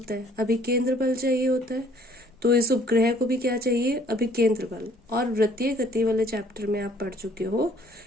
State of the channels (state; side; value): normal; both; correlation 0.59